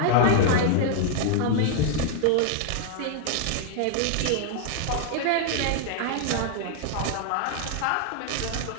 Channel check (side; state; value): both; different; correlation 0.00